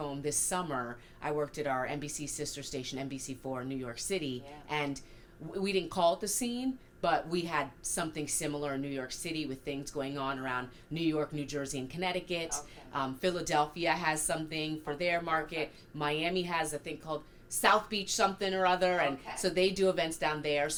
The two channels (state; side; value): identical; both; correlation 1.00